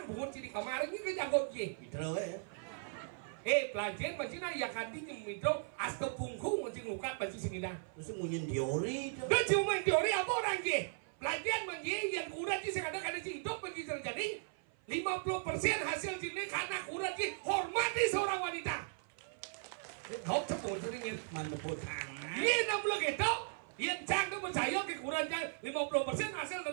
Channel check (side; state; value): left; silent; 53 dB below the other